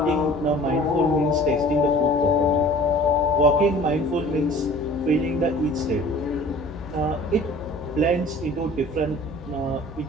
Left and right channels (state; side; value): normal; both; correlation 0.47